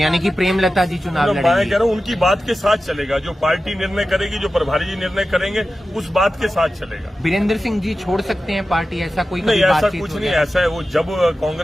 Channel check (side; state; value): both; normal; correlation 0.94